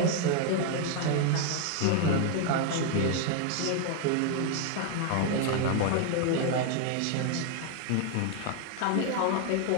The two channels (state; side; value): different; both; correlation 0.01